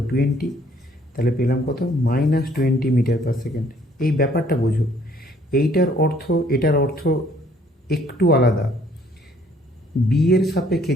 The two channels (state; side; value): normal; both; correlation 0.62